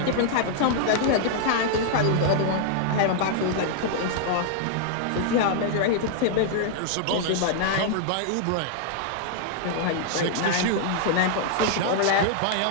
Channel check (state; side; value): different; both; correlation -0.01